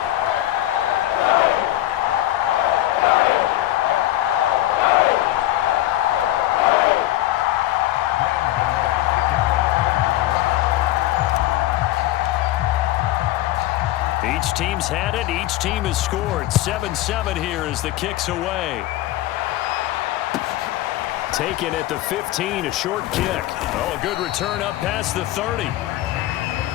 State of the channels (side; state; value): right; quieter; 15.3 dB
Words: Each team's had it. Each team has scored. 7-7 here as the kick's away. Taken at the 15, a short kick. Oh, a good return up past the 30.